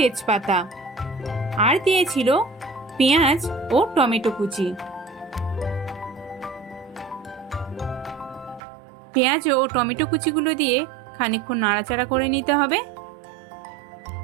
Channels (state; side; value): drops out; left; at 8.6 s